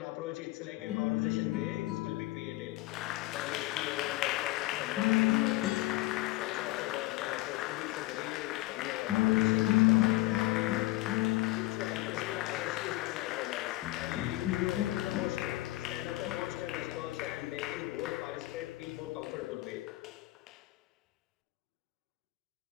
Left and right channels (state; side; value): quieter; right; 18.5 dB